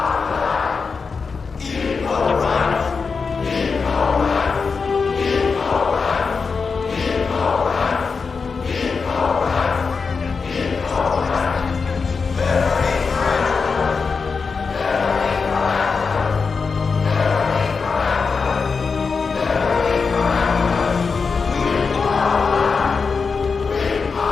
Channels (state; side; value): quieter; right; 5.0 dB